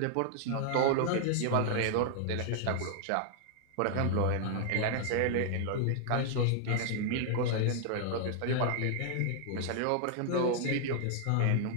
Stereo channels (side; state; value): both; different; correlation 0.00